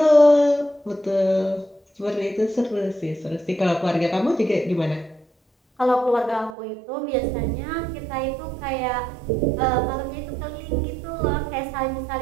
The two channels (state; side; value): drops out; left; at 6.6 s